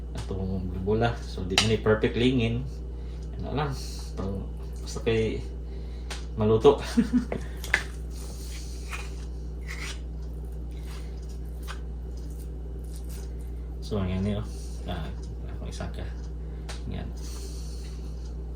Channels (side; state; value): both; identical; correlation 1.00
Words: atong bola. So di man ni perfect lingin, ano lang basta kay maluto. So ang yan niyo ako isa ka yan.